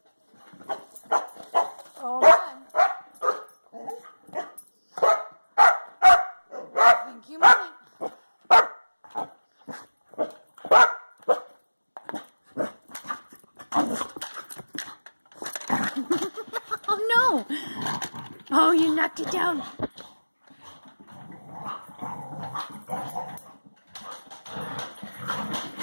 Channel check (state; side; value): inverted; both; correlation -1.00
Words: Oh man. I think you might. Oh no! Oh, you knocked it down.